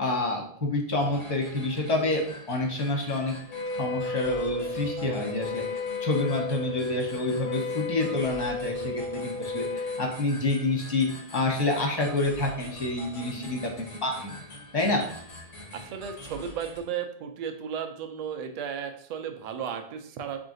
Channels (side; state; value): left; late; 1.7 ms